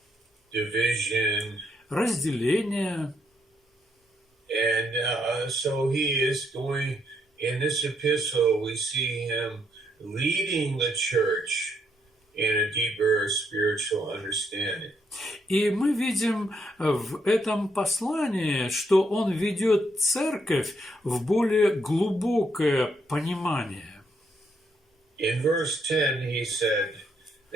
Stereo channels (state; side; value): normal; both; correlation 0.75